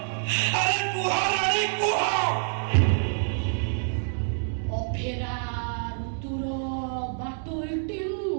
ଆରେ କୁହ ରାଣୀ, କୁହ। ଅଫେରା ଋତୁର ବାଟ ଏଠି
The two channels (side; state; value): left; silent; digital silence